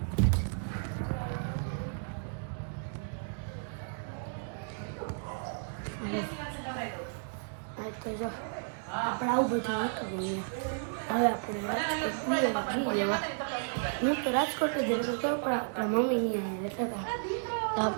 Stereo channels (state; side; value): silent; left; digital silence